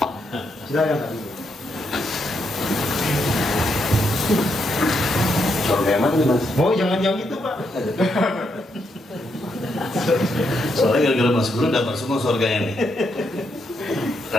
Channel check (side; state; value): both; normal; correlation 0.79